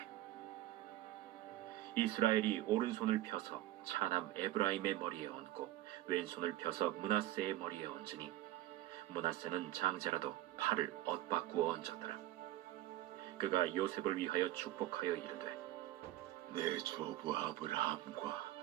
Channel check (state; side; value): quieter; left; 15.1 dB